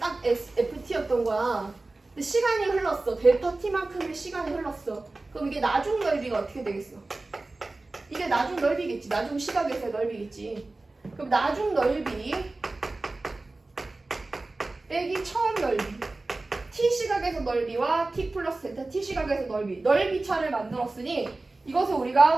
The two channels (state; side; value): quieter; left; 3.2 dB